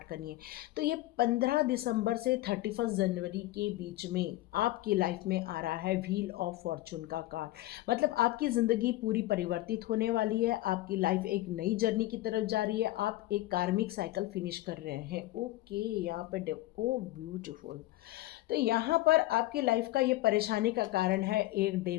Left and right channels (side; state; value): right; quieter; 16.9 dB